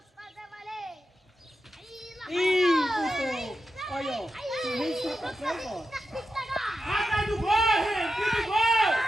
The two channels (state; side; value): normal; both; correlation 0.89